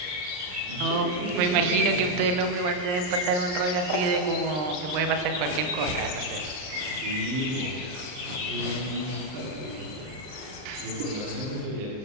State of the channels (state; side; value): late; left; 39 ms